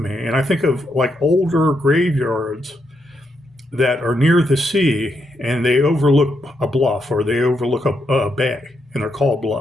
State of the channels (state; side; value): normal; both; correlation 0.80